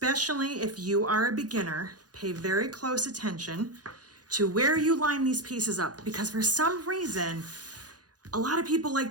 if you are a beginner, pay very close attention to where you line these pieces up, because for some reason, a lot of people like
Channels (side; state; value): left; late; 0.69 ms